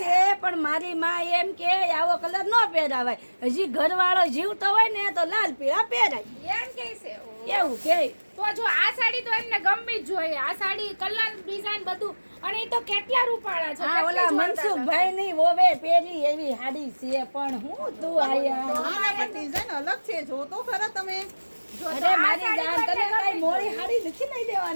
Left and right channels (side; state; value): both; inverted; correlation -1.00